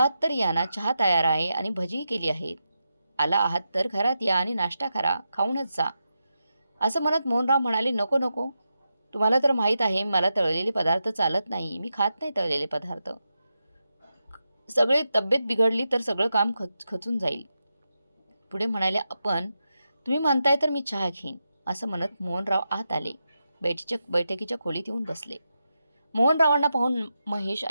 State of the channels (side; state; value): both; inverted; correlation -0.88